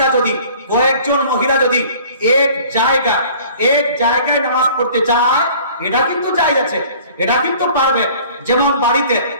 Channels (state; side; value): inverted; both; correlation -0.49